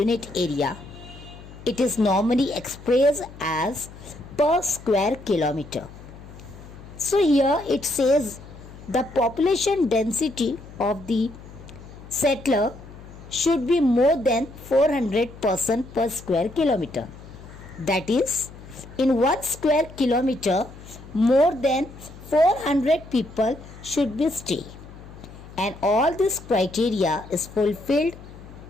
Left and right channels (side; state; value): left; noise; hum, 17 dB below the sound